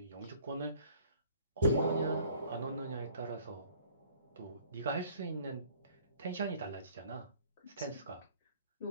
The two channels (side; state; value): both; inverted; correlation -0.54